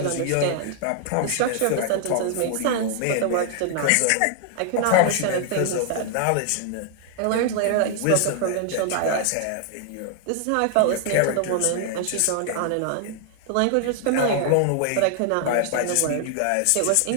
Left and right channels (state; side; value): different; both; correlation 0.00